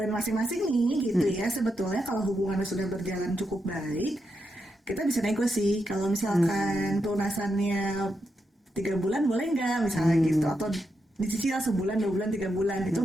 masing-masing nih gitu ya. Sebetulnya kalau hubungannya sudah berjalan cukup baik, kita bisa nego sih. Kalau misalkan pelunasannya 3 bulan boleh nggak misalnya gitu, atau dicicil sebulan, 2 bulan, 3 bulan itu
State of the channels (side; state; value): both; normal; correlation 0.84